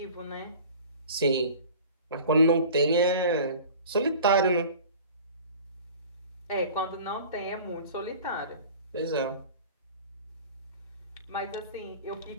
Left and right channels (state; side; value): inverted; both; correlation -0.42